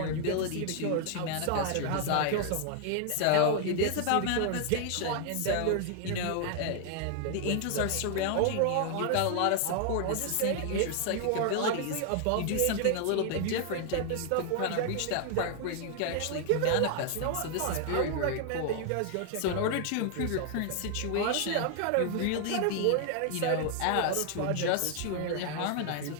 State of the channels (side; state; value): both; different; correlation 0.00